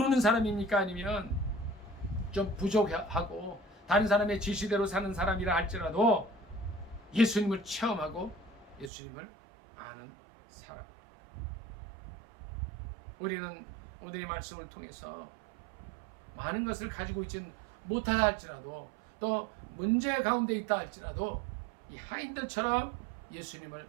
사람입니까? 아니면 좀 부족하고 다른 사람의 지시대로 사는 사람이라 할지라도 예수님을 체험하고 예수님을 아는 사람. 우리는 오늘 이 말씀을 통해서 많은 것을 가지고 있진 못하다 할지라도 또 문제 가운데 있다 할지라도 이 하인들처럼 예수님을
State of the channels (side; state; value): left; drops out; at 8.9 s